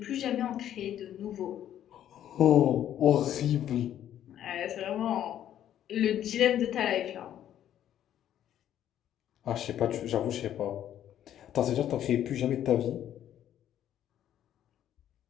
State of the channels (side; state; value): right; quieter; 11.0 dB